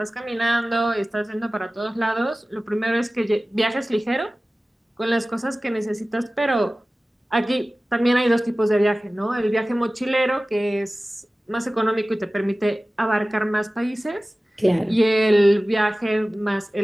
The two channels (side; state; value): both; normal; correlation 0.97